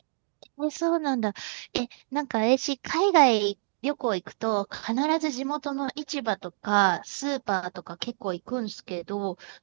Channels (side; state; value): left; silent; digital silence